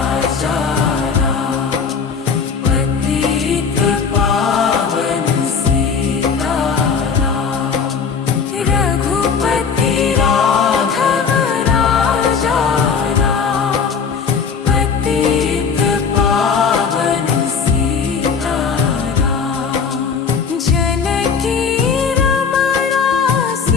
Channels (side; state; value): right; quieter; 5.9 dB